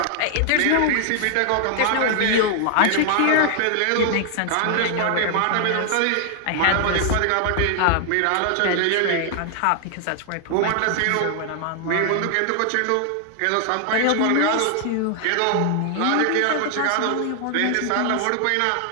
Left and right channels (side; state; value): both; different; correlation 0.00